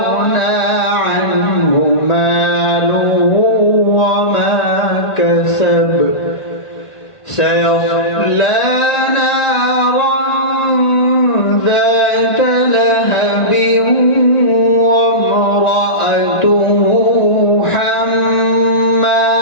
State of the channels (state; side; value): late; right; 1.5 ms